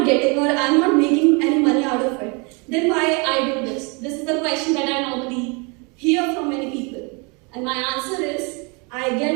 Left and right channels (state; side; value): quieter; left; 31.3 dB